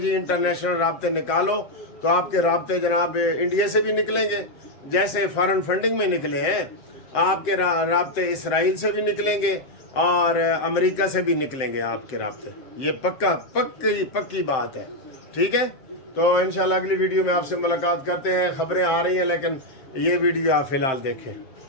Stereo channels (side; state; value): right; late; 7.6 ms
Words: इंटरनेशनल राब्ते निकालो, तो आपके राब्ते जनाब इंडिया से भी निकलेंगे, जैसे फॉरेन फंडिंग में निकले हैं। आपके राब्ते इसराइल से भी निकलेंगे और अमेरिका से भी निकलेंगे आपके राब्ते। ये पक्की बात है, ठीक है। तो इंशाल्लाह अगली वीडियो में आपसे मुलाकात करते हैं। खबरें आ रही हैं, लेकिन ये वीडियो आप फिलहाल देखें।